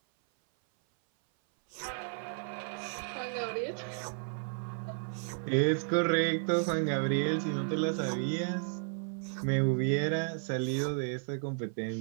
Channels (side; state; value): left; silent; 56 dB below the other